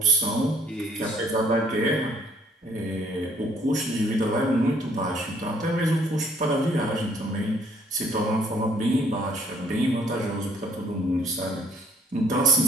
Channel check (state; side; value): normal; both; correlation 0.64